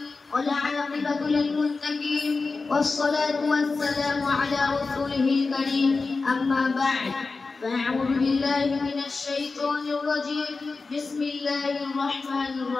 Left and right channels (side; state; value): right; quieter; 4.0 dB